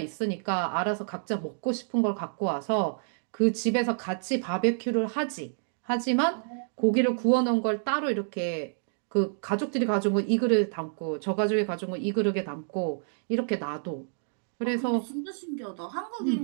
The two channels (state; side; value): silent; left; digital silence